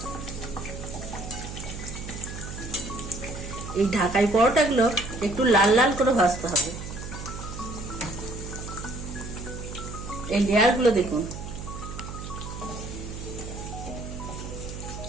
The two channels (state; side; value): noise; right; hum, 9 dB below the sound